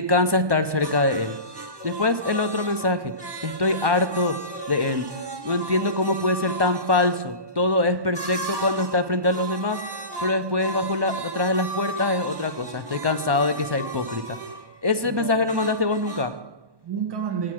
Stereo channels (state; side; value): late; left; 1.1 ms